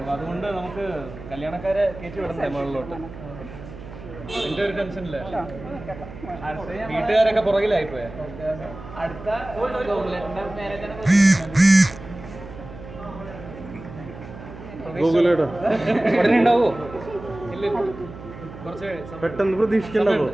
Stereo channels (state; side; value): noise; right; hum, 14 dB below the sound